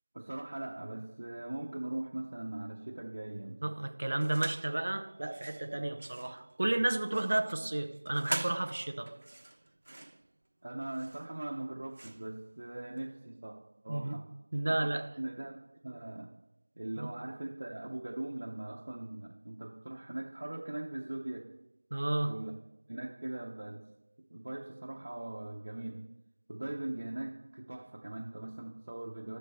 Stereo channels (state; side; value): inverted; both; correlation -1.00